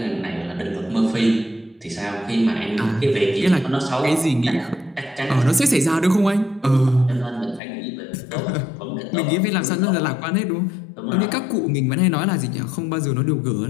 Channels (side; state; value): right; drops out; at 7.6 s